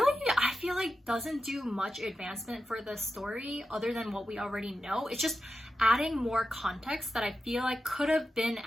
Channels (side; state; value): both; normal; correlation 0.90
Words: I feel like, doesn't do much advancement for the story other than what we already know. It's just adding more context that I feel like could have been